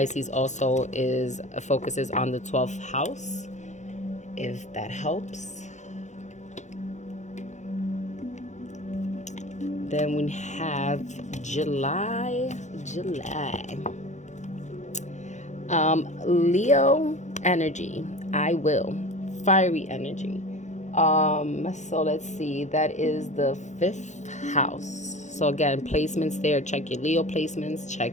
also focuses on the 12th house, if that helps. Then we have July. Leo energy. I will. Fiery energy. So let's see. That is the 5th house. So again, placements there. Check your Leo placements. Check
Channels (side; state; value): right; late; 0.34 ms